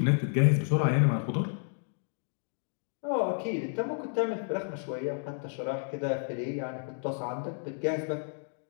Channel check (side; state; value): right; silent; digital silence